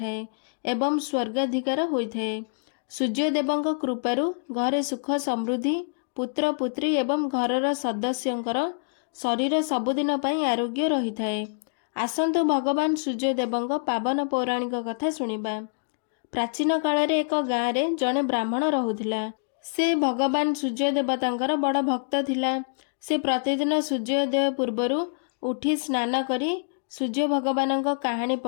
एवं स्वर्गाधिकार होइथाए। सूर्यदेवंक कृपारु घरे सुख समृद्धि पुत्र पुत्री एवं घरर सदस्यंकर शरीर सबुदिन पई आरोग्य रही थाए। आसंतु भगवान सूर्यदेवंक पावन पौराणिक कथा सुनिबा। प्राचीन काल एक गाँव रे जड़े ब्राह्मण रहुथिला। से भगवान सूर्यदेवतांकर बड़ भक्त थिला। से प्रतिदिन सूर्योदय पूर्वरु उठी स्नान करी सूर्य भगवानक कहानी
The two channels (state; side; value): silent; right; digital silence